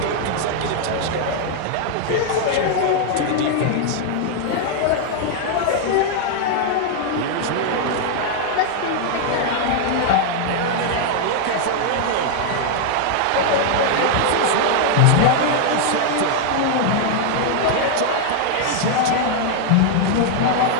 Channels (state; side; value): different; both; correlation 0.00